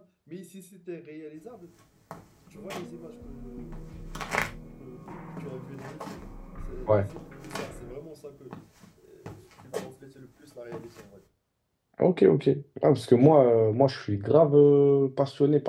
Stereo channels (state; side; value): identical; both; correlation 1.00